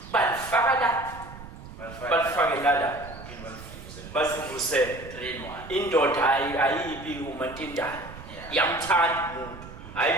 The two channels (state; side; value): noise; right; rumble, 15 dB below the sound